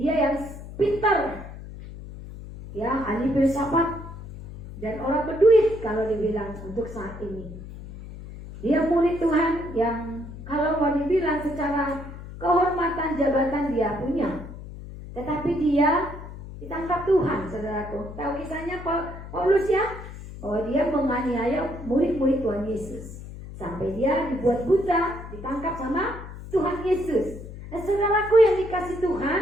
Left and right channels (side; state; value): left; noise; hum, 13 dB below the sound